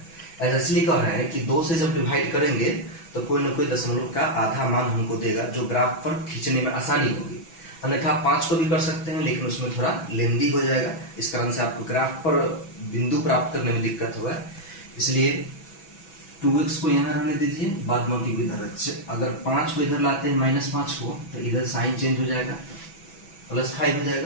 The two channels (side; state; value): right; late; 6.1 ms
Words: ऐसा इसलिए कह रहे हैं कि 2 से जब डिवाइड करेंगे तो कोई ना कोई दशमलव का आधा मान हमको देगा, जो ग्राफ पर खींचने में आसानी होगी। अन्यथा आप 5 को भी कर सकते हैं, लेकिन उसमें थोड़ा लेंदी हो जाएगा। इस कारण से आपको ग्राफ पर बिंदु प्राप्त करने में दिक्कत होगा। इसलिए 2x को यहाँ रहने दीजिए, बाद बाकी को इधर रखिए। अगर 5 को इधर लाते हैं -5 को, तो इधर साइन चेंज हो जाएगा, +5 हो